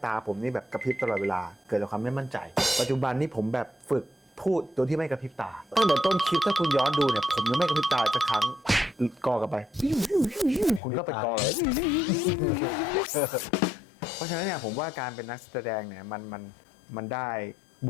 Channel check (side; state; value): right; drops out; at 10.8 s